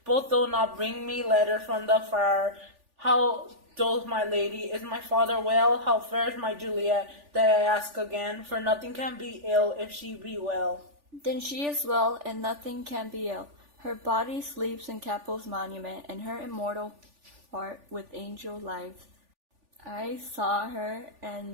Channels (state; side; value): late; left; 3.4 ms